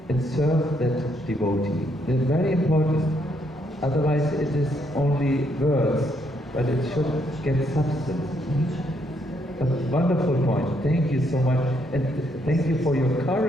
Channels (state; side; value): normal; both; correlation 0.73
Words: and serve that devotee. It's very important. Otherwise it is only words, but it should get substance. A wonderful point. Thank you so much. And thank you for your